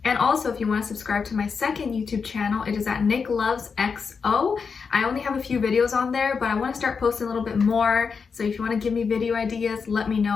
And also, if you want to subscribe to my second YouTube channel, it is at Nicloves XO. I only have a few videos on there, but I want to start posting a little bit more. So if you want to give me video ideas, let me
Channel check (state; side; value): quieter; right; 5.6 dB